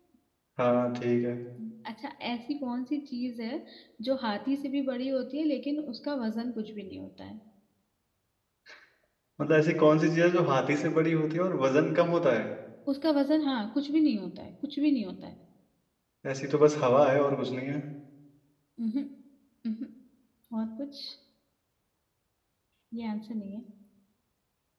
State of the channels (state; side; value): identical; both; correlation 1.00